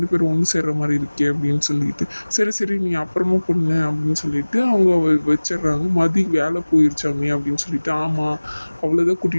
பேரும் ஒன்று சேர்ற மாதிரி இருக்கே அப்படின்னு சொல்லிட்டு. சரி சரி நீ அப்புறமா பொண்ணு அப்படின்னு சொல்லிட்டு அவங்க வச்சிடுறாங்க. மதி வேலை போயிருச்சாமே அப்படின்னு சொல்லிட்டு, ஆமாம் அவ்வளோதான்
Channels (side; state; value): both; inverted; correlation -1.00